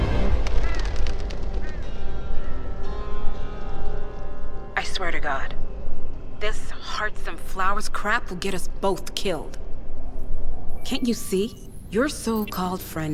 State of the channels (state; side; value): identical; both; correlation 1.00